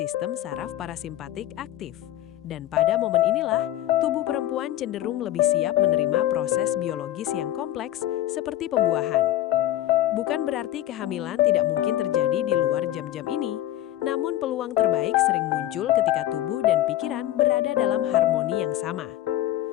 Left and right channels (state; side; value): quieter; right; 13.6 dB